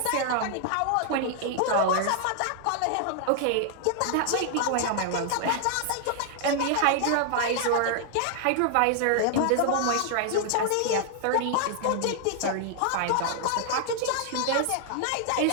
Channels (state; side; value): different; both; correlation 0.00